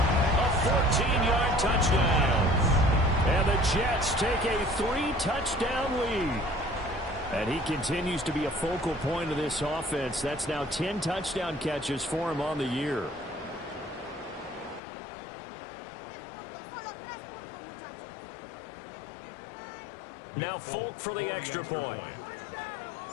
a 14-yard touchdown. And the Jets take a 3-touchdown lead. And he continues to be a focal point of this offense. That's now 10 touchdown catches for him on the year. Now Folk for the extra point.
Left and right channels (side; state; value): right; drops out; at 14.8 s